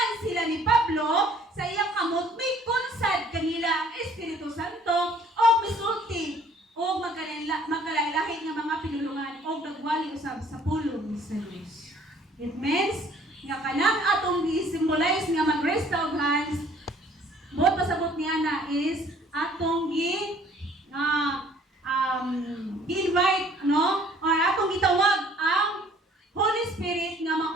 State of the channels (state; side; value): normal; both; correlation 0.57